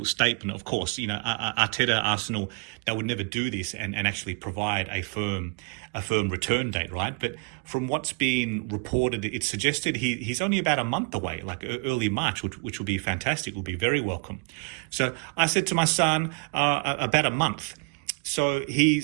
statement, of course. You know, Arteta, Arsenal, they would never do this and actually provide a firm return date, right? But from what's been reported, it suggested he's only about a month away, like early March, which will be fantastic, will be very welcome. So I said to my son, about a month. So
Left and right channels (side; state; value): left; quieter; 36.3 dB